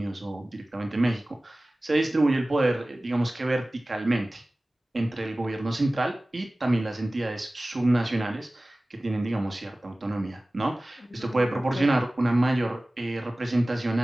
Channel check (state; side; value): normal; both; correlation 0.98